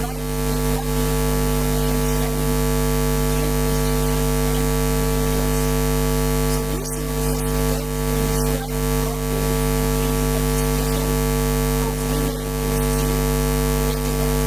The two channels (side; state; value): left; noise; hum, 19 dB below the sound